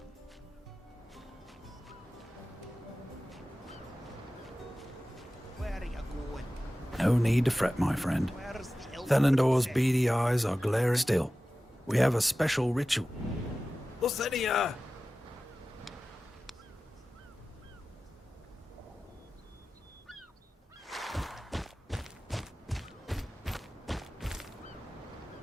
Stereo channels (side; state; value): both; normal; correlation 0.95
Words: Where are you going? No need to fret, my friend. Where's the elf Thelendor's princess? beady eyes are glaring still. We have a special ritual. Lasenia!